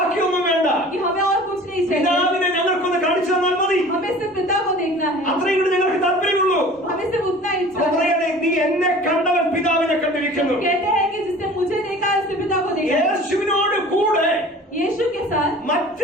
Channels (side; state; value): both; normal; correlation 0.44